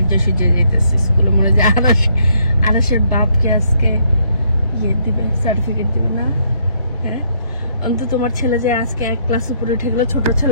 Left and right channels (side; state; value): both; inverted; correlation -0.70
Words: সুজে যেতেছে স্কুলে, মনে হয় আরাশের বাপকে আজকে ইয়ে দিবে, সার্টিফিকেট দিবে না? হ্যাঁ, অন্তত তোমার ছেলে যে আজকে এক ক্লাস উপরে উঠে গেল, ছোট